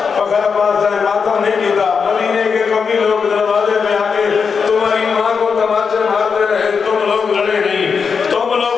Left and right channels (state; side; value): quieter; right; 5.8 dB